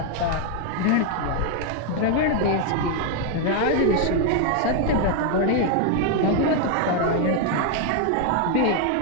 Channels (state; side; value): different; both; correlation 0.01